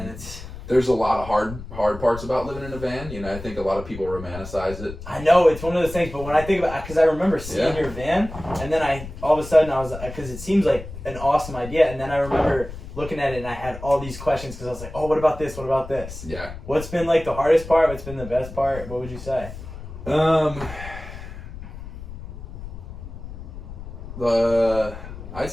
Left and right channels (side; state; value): left; noise; rumble, 12 dB below the sound